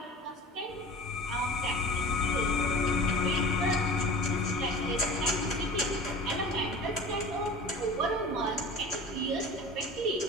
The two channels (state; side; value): normal; both; correlation 0.37